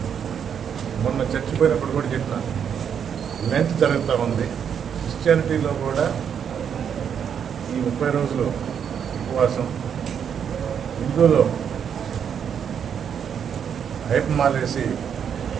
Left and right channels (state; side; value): quieter; left; 7.9 dB